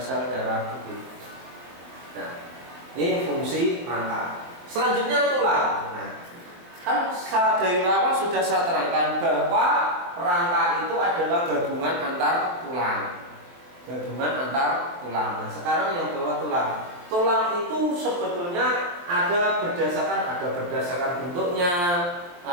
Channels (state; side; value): late; left; 23 ms